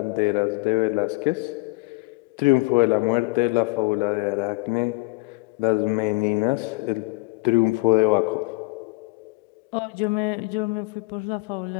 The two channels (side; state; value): right; quieter; 25.1 dB